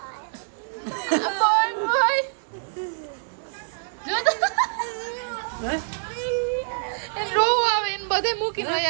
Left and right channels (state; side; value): silent; left; digital silence